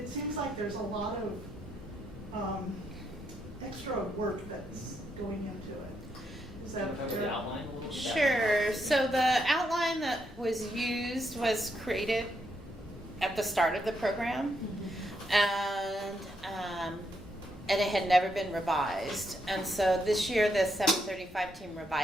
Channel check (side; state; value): both; normal; correlation 0.78